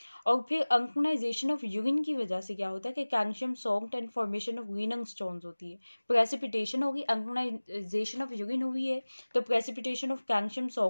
और फिर अल्कनाइजेशन ऑफ यूरिन की वजह से क्या होता है कि calcium salt and formation of renal stones होती है, प्रेसिपिटेशन होगी, अल्कनाइजेशन ऑफ यूरिन हुई है तो प्रेसिपिटेशन ऑफ कैल्शियम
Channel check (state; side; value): inverted; both; correlation -1.00